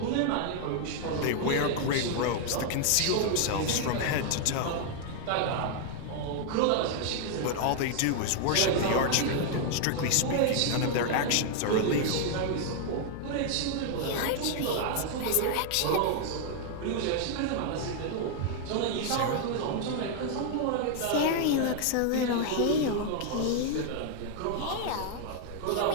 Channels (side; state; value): both; different; correlation 0.00